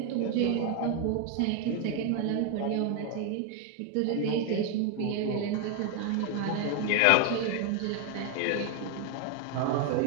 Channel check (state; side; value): different; both; correlation 0.01